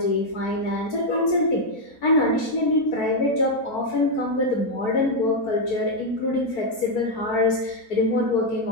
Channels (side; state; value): right; late; 4.4 ms